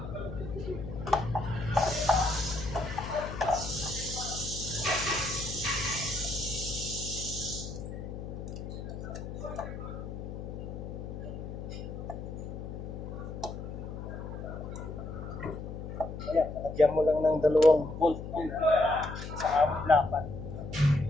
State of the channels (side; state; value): left; noise; hum, 8 dB below the sound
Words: Bigyan mo lang ng 2 volt sa awit lapat.